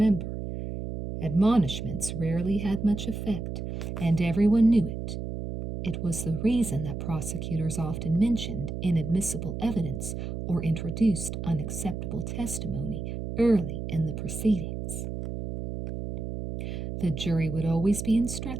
Admonishments rarely had much effect, and everyone knew it. It was the reason that prosecutors often mentioned inadmissible evidence or introduced unacceptable testimony early in the proceedings. The jury would always be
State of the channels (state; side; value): noise; right; hum, 5 dB below the sound